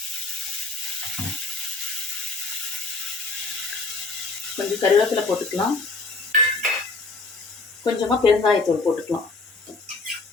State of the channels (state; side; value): quieter; right; 3.6 dB